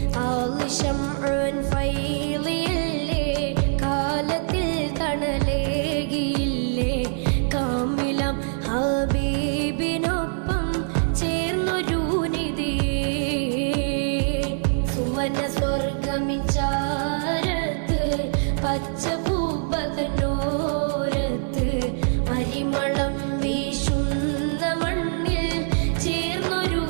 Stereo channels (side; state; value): left; silent; 63 dB below the other